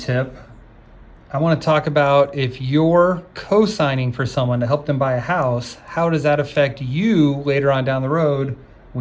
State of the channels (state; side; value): identical; both; correlation 1.00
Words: I want to talk about if you're co-signing for someone to help them buy a house, how does that affect you later on down the road